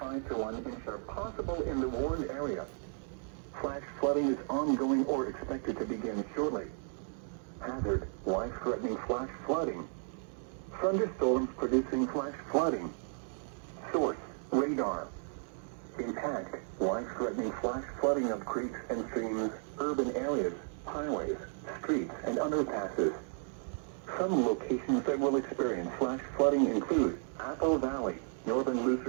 to 1 inch are possible in the warned area. Flash flooding is ongoing or expected to begin shortly. Hazard: life-threatening flash flooding. Thunderstorms producing flash flooding. Source: radar. Impact: life-threatening flash flooding of creeks and streams, urban areas, highways, streets, and underpasses. Some locations that will experience flash flooding include Apple Valley, northern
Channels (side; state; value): left; silent; 55 dB below the other